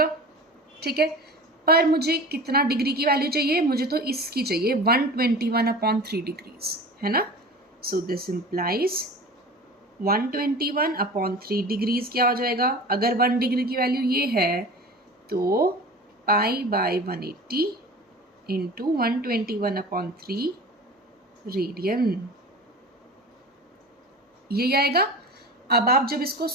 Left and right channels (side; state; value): both; normal; correlation 0.36